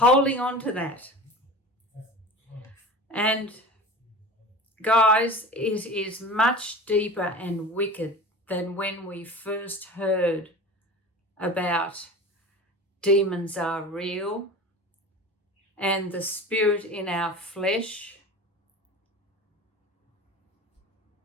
on to that. And guys, it is much deeper and wicked than when we first heard about demons are real and the spirit in our flesh.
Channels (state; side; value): normal; both; correlation 0.35